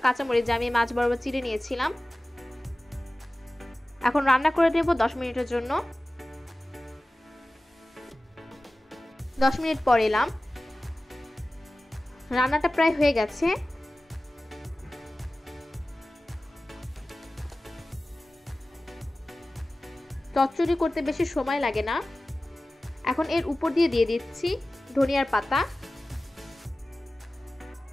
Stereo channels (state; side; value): normal; both; correlation 0.96